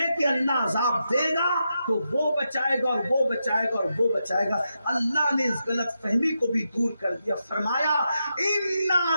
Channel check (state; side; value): inverted; both; correlation -0.86